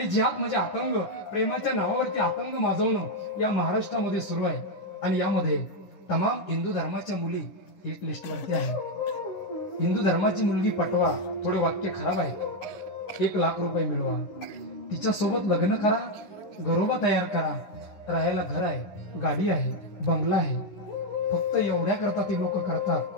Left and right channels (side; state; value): right; late; 9.9 ms